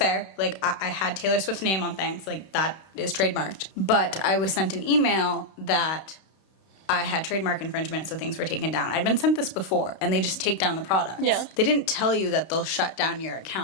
Like, I had Taylor Swift's name on things. Like, that is trademarked. But I was sent an email that I had trademark infringement, so things were taken down. I'd been sent this before, and they just take down the products. Yeah. They didn't tell you that they'll shut down your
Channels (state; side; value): late; right; 31 ms